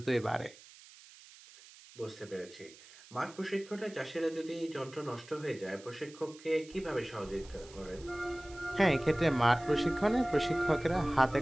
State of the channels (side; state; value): right; noise; hiss, 21 dB below the sound